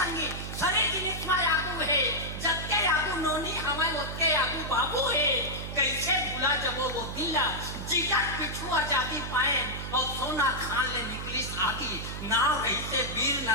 सरी जिनिस में आगू है जत्ते आगू नोनी हमें उठके आगू बाबू है कैसे भूला जब वो दिला जिगर पिछू आजादी पाए और सोना खान ले निकली आगी नाव रही से वीर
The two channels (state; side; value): noise; right; hum, 7 dB below the sound